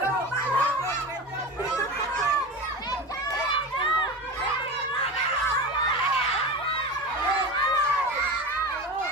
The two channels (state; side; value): normal; both; correlation 0.27